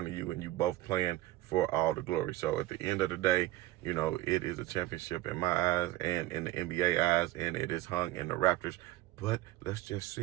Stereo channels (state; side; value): quieter; left; 16.7 dB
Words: of you, and you both playing for all the glory. So at the end of the day, it is a championship in my eyes and in the NBA eyes, and it is hung in the Raptors. But let's just